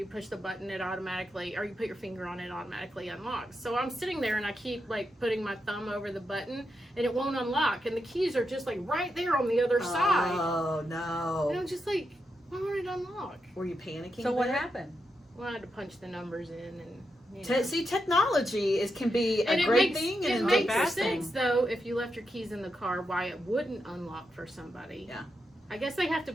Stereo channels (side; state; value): both; normal; correlation 0.85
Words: push the button, it automatically, or you put your finger on it, automatically unlocks. So I'm sitting there and I keep like putting my thumb over the button and it won't unlock, and the keys are just like right there on the other side. Oh And no! I'm just like, why won't it unlock? Were you panicking? So what there? happened? Well, I had to punch the numbers in and. See, technology can be a And great thing it and a makes bad sense thing. though if you left your keys in the car, why it wouldn't unlock for somebody. Yeah. I guess they have to